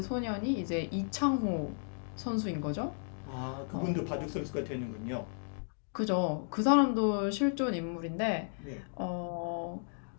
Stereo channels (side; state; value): right; silent; digital silence